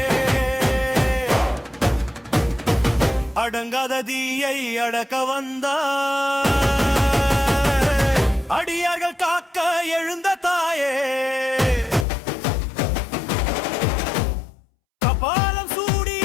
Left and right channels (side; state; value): right; drops out; at 12.1 s